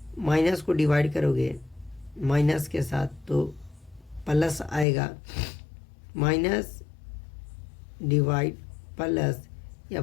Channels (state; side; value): drops out; right; at 4.9 s